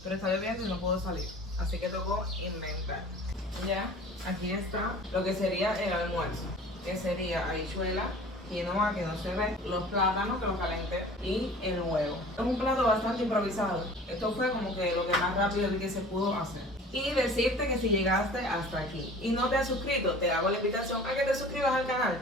Pero está lloviendo y no puedo salir, así que tocó inventar. Ya, aquí está lo que sería el almuerzo, que sería habichuela, quinoa que no se ve, los plátanos que los calenté y el huevo. Es un plato bastante improvisado. Esto fue como que lo que más rápido que se pudo hacer. Y decirte que si llegaste hasta aquí y no te has suscrito, te hago la invitación a que te suscribas al canal,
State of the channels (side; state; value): both; normal; correlation 0.44